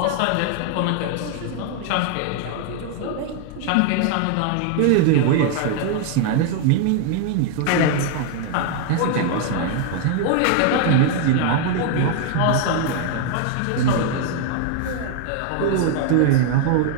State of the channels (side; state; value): both; different; correlation 0.00